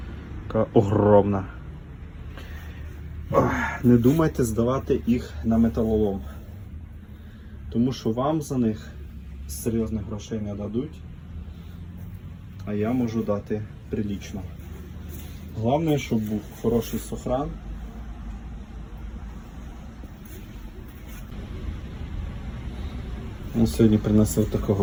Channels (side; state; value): both; identical; correlation 1.00